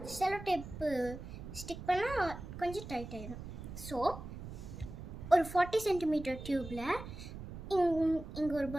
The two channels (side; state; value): right; noise; rumble, 11 dB below the sound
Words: செலோ டேப்பு ஸ்டிக் பண்ணால் கொஞ்சம் டைட் ஆகிடும். ஸோ ஒரு 40 சென்டிமீட்டர் டியூப்பில் இங்கே ஒரு